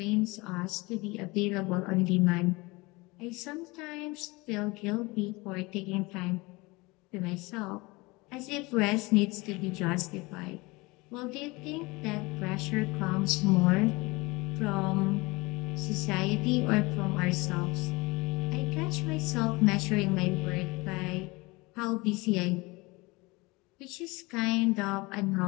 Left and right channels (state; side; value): quieter; right; 24.0 dB